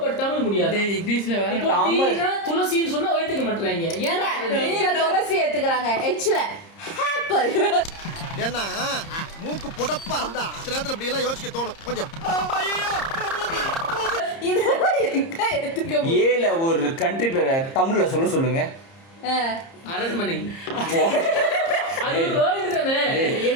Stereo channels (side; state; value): right; late; 30 ms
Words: பட் தமிழ் முடியாது. இங்கிலீஷ்ல வேற தமிழ் துளசின்னு சொன்னா ஏத்துக்க மாட்டறாங்க. ஏங்க நீங்க துளசி ஏத்துக்கறாங்க, எச்ல ஆப்பிள். ஏன்னா மூக்கு புடப்பா இருந்தா சில நேரத்துல இப்படி எல்லாம் யோசிக்க தோணும் கொஞ்சம். ஏல ஒரு கண்ட்ரி பேரை தமிழ்ல சொல்லுங்க. அரண்மனை. அது வேர்ல்ட் தானே,